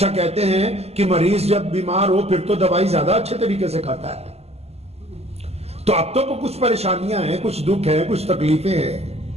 کہتے ہیں کہ مریض جب بیمار ہو پھر تو دوائی زیادہ اچھے طریقے سے کھاتا ہے. تو اب تو کچھ پریشانیاں ہیں, کچھ دکھ ہیں, کچھ تکلیفیں ہیں.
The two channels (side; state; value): left; late; 0.30 ms